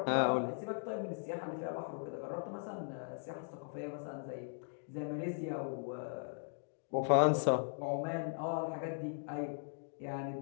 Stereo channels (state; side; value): silent; right; digital silence